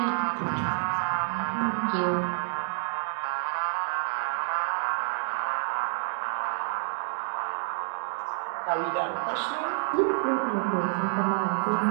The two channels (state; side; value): silent; left; 59 dB below the other